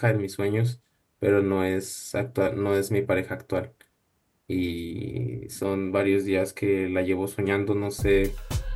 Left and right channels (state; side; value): identical; both; correlation 1.00